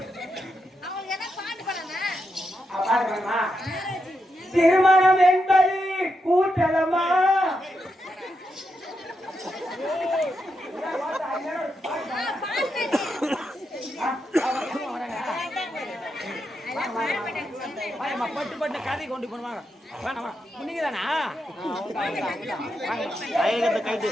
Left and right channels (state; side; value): normal; both; correlation 0.84